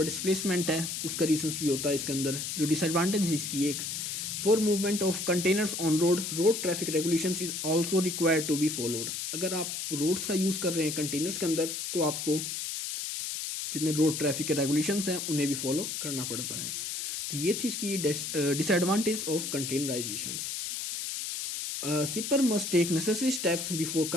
डिस्प्लेसमेंट है, उसका रीजंस भी होता है इसके अंदर। जो डिसएडवांटेज है इसकी एक, for movement of containers on road traffic regulations is also required to be followed. अगर आप रोड्स का यूज़ कर रहे हैं कंटेनर्स के अंदर, तो आपको जितने रोड ट्रैफिक के रेगुलेशंस हैं उन्हें भी फॉलो करना पड़ता है। तो ये थी इसकी disadvantage of containerisations. Shipper must take necessary steps before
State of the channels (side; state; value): left; noise; hiss, 4 dB below the sound